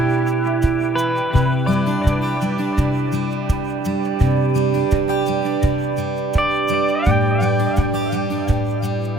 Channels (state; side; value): normal; both; correlation 0.63